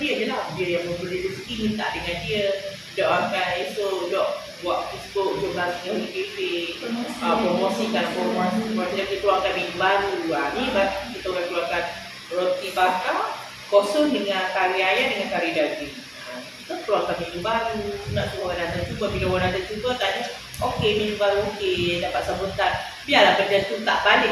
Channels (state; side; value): identical; both; correlation 1.00